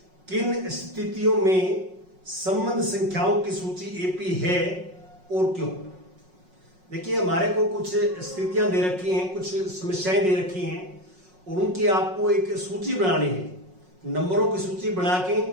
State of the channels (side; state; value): left; late; 5.5 ms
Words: किन स्थितियों में संबंध संख्याओं की सूची एपी है और क्यों। देखिए, हमारे को कुछ स्थितियां दे रखी हैं, कुछ समस्याएं दे रखी हैं और उनकी आपको एक सूची बनानी है, नंबरों की सूची बना के